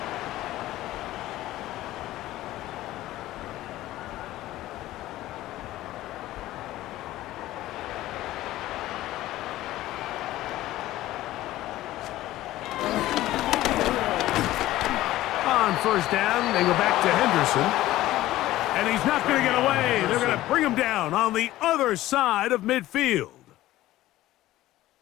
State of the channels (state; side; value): quieter; right; 15.6 dB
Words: First down, they go back to Henderson. And he's not going to get away. They're going to bring him down on the other side of midfield.